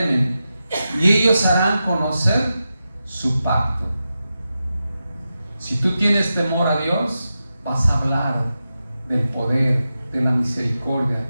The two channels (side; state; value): both; inverted; correlation -0.90